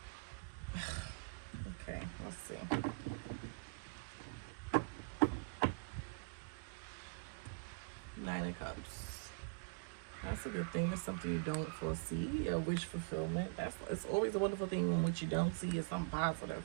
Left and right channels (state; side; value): quieter; left; 33.2 dB